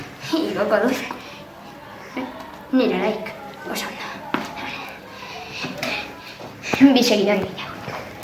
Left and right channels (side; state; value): both; identical; correlation 1.00